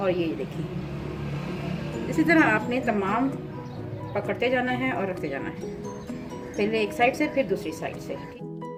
ये देखिए, इसी तरह आपने तमाम पकड़ते जाना है और रखते जाना है, पहले एक साइड से फिर दूसरी साइड से।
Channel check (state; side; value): identical; both; correlation 1.00